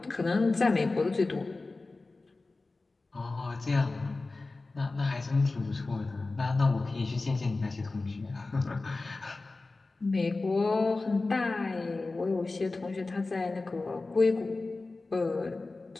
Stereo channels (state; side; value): quieter; right; 3.4 dB